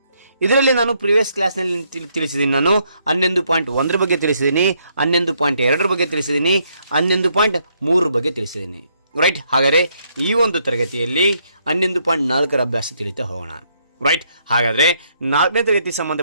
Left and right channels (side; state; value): both; inverted; correlation -0.73